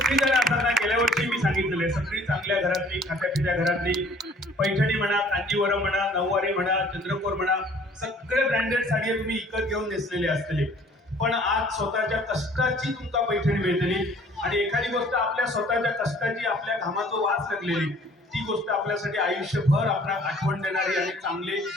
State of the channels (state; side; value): normal; both; correlation 0.54